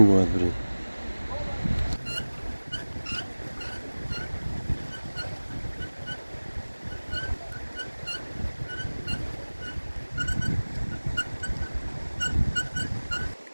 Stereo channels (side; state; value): both; inverted; correlation -1.00